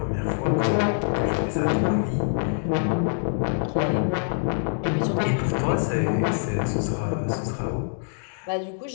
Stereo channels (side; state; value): right; silent; digital silence